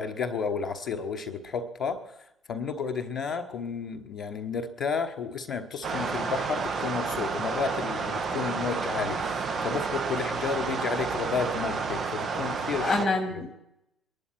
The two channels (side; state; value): both; normal; correlation 0.61